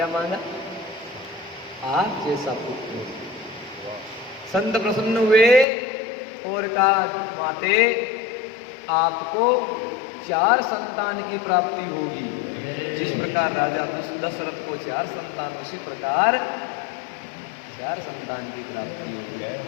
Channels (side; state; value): right; drops out; at 5.7 s